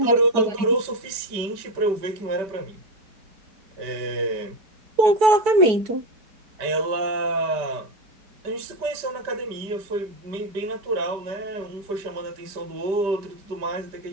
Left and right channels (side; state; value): left; late; 5.1 ms